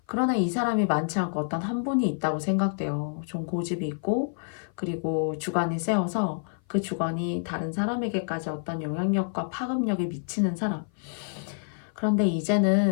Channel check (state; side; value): silent; right; 55 dB below the other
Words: 그러나 이 사람이 많지 않고 어떤 한 분이 있다고 생각돼요. 좀 고집이 있고 그리고 주관이 세워서 그 주관이 다른 사람에게까지 어떤 영향력과 파급력이 미치는 사람. 그런데